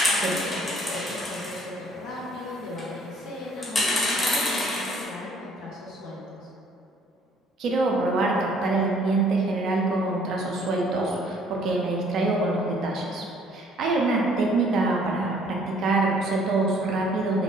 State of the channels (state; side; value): normal; both; correlation 0.60